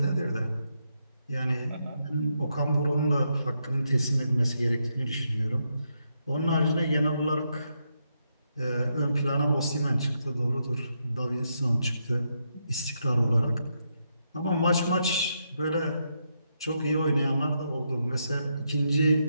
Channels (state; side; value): inverted; both; correlation -0.81